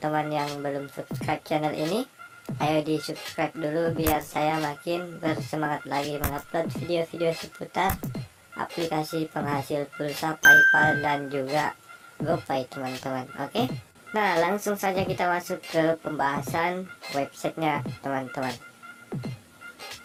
yang belum subscribe channel ini, ayo di subscribe dulu biar saya makin bersemangat lagi mengupload video-video seputar aplikasi penghasil pulsa PayPal dan juga GoPay teman-teman. Oke, nah langsung saja kita masuk ke pembahasan websitenya teman-teman.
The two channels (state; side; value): identical; both; correlation 1.00